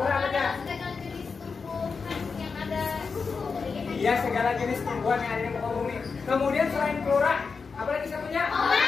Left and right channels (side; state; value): right; quieter; 5.0 dB